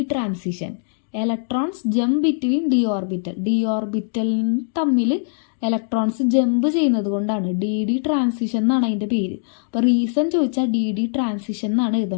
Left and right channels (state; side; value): silent; right; digital silence